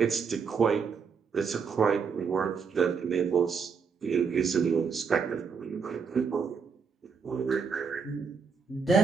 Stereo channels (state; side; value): quieter; left; 5.8 dB